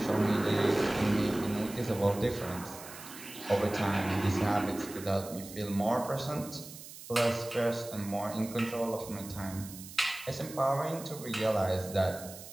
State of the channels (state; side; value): noise; right; hiss, 14 dB below the sound